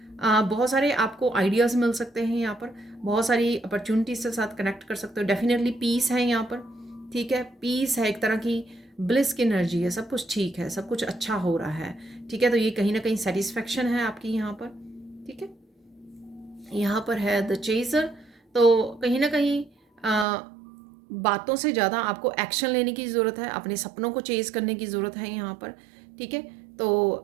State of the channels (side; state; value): left; drops out; at 20.2 s